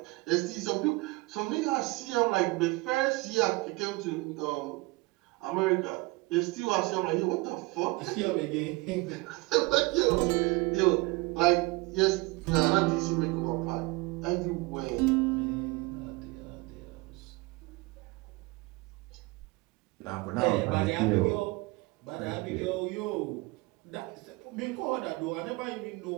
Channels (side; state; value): left; quieter; 23.9 dB